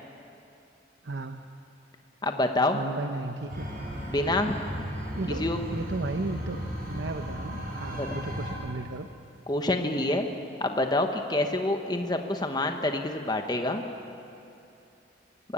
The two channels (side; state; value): both; normal; correlation 0.48